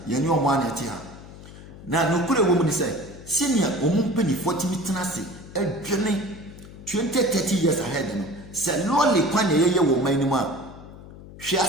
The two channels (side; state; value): left; noise; hum, 17 dB below the sound